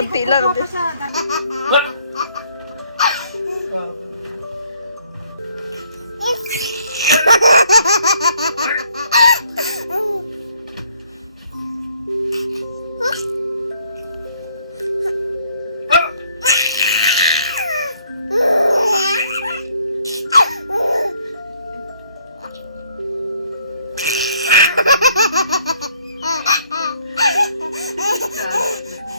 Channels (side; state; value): both; inverted; correlation -0.65